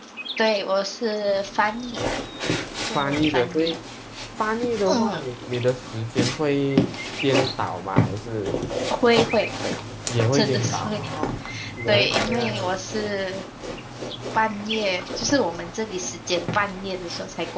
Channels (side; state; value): both; identical; correlation 1.00